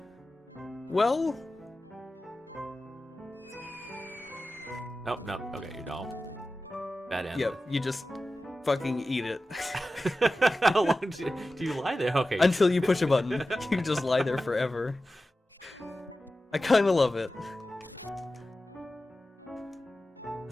Well, Nope, nope. Okay, you don't. Bad end. yep, you just fucking eat it. How long do you lie there? Okay. Until you push a button. You just lie there forever. I kinda love it.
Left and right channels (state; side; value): normal; both; correlation 0.94